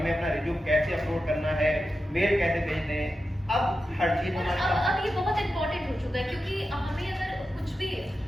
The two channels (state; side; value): normal; both; correlation 0.91